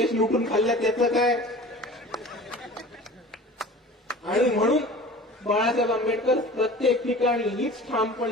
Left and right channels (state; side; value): normal; both; correlation 0.40